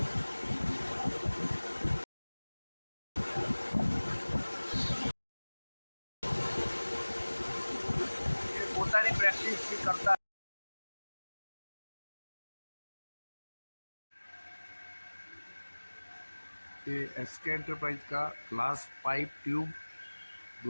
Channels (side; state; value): both; inverted; correlation -1.00